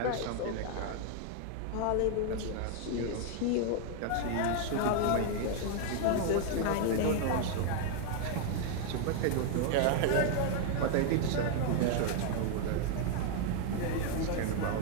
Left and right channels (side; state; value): both; different; correlation 0.00